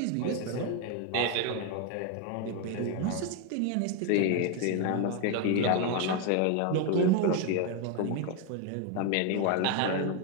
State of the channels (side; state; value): both; different; correlation 0.01